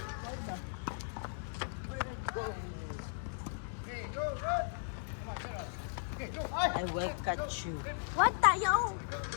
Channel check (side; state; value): right; silent; digital silence